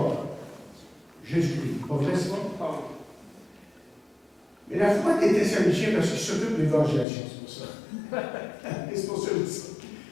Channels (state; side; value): drops out; right; at 7.1 s